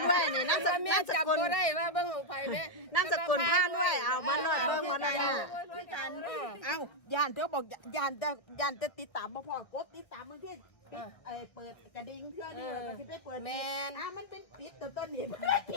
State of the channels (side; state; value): right; late; 1.4 ms